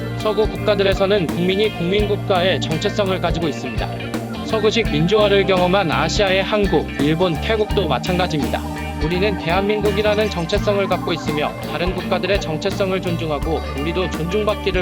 서구 국가들에서는 국민이 국민국가의 정체성을 가지고 있습니다. 서구식 민주화를 경험한 아시아의 한국, 일본, 태국도 마찬가지입니다. 우리는 대한민국이라는 정체성을 갖고 있으며 다른 국가들의 정체성을 존중하고 우리도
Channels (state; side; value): identical; both; correlation 1.00